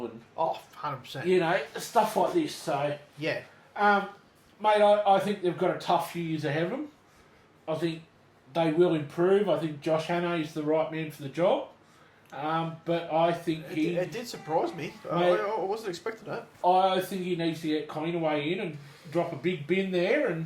and 100%. Stuff like this. So mate, I think they've got a tough few years ahead of them. I think they will improve. I think Josh Hannay is the right man for the job. But I think it did surprise me. I wasn't expecting that. I think he needs to get Cleanaway in and drop a big bin there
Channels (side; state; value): both; identical; correlation 1.00